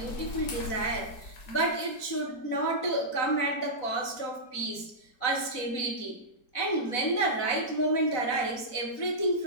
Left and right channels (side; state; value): right; late; 4.1 ms